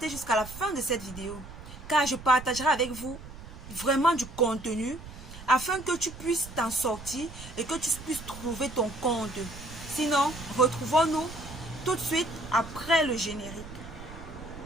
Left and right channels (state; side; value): noise; right; rumble, 14 dB below the sound